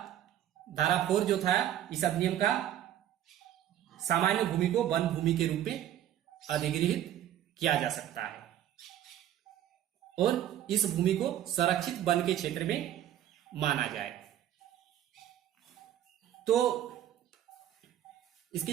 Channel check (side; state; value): left; quieter; 11.6 dB